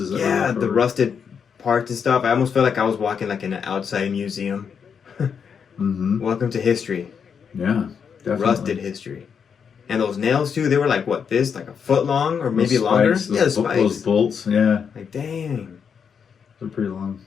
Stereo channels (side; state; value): right; quieter; 6.8 dB